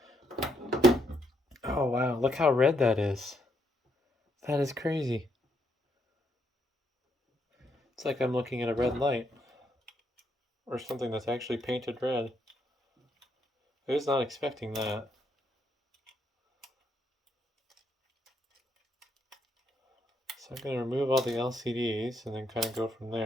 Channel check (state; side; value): normal; both; correlation 0.75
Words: Oh wow, look how red that is. That is crazy. It's like I'm looking at a red light. Or something that's actually painted red. I was not expecting that. So I'm going to remove all the LCDs and then kind of go from